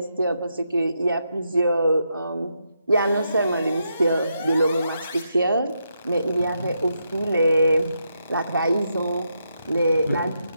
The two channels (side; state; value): both; inverted; correlation -0.81